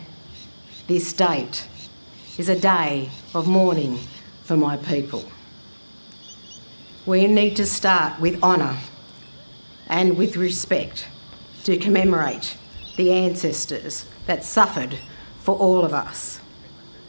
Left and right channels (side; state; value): both; inverted; correlation -1.00